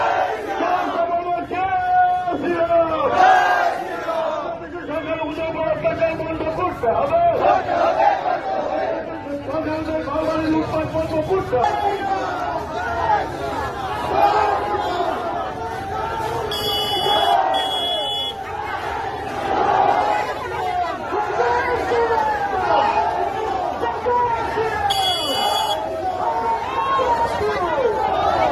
সরকার ওদের উপর অত্যাচার বন্ধ করতে হবে, সরকার ঘরবাড়ি লুটপাট বন্ধ করতে হবে।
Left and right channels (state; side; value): identical; both; correlation 1.00